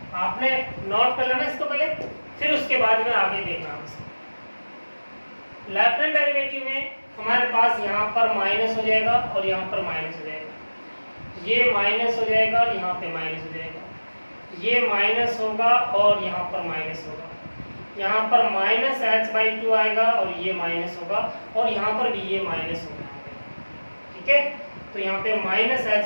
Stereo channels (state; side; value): inverted; both; correlation -1.00